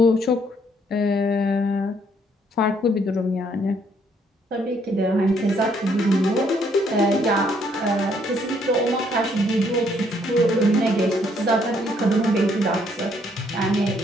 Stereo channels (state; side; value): normal; both; correlation 0.68